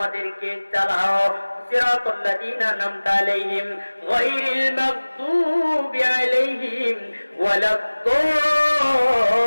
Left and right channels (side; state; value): both; inverted; correlation -1.00